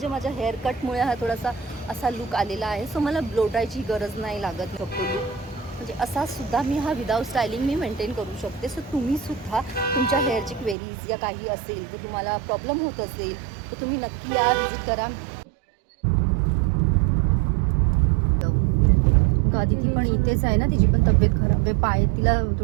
माझ्या हेअर कटमुळे हा थोडासा असा लुक आलेला आहे. सो मला ब्लो ड्रायची गरज नाही लागत. शकतो लुक म्हणजे असासुद्धा मी हा विदाऊट स्टायलिंग मी मेंटेन करू शकते. सो तुम्हीसुद्धा तुमच्या हेअरची क्वेरीज या काही असेल, तर तुम्हाला प्रॉब्लेम होत असेल तर तुम्ही नक्की या, विजिट करा. ती पण इथेच आहे ना, तिची पण तब्येत खराब आहे, पाय तिला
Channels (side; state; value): left; drops out; at 10.8 s